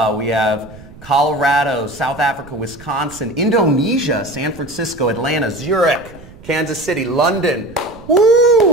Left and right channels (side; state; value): right; noise; rumble, 20 dB below the sound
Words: We have Colorado, South Africa, Wisconsin, Indonesia, San Francisco, Atlanta, Zurich, Kansas City, London,